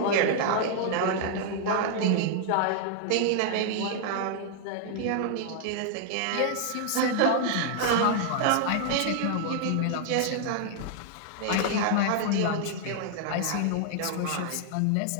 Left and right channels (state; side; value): different; both; correlation -0.01